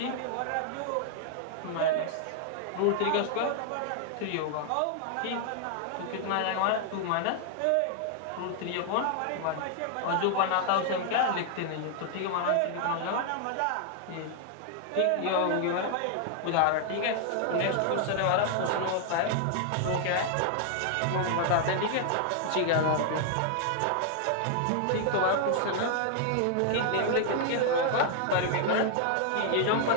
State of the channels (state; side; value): different; both; correlation 0.00